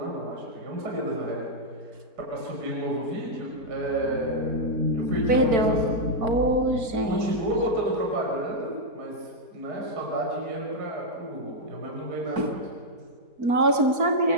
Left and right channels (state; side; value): late; left; 4.4 ms